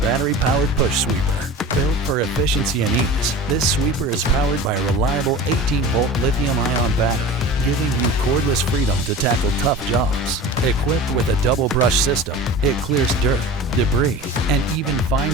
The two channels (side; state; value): both; normal; correlation 0.35